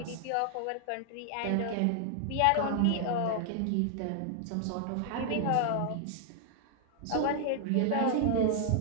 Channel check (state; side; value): different; both; correlation -0.01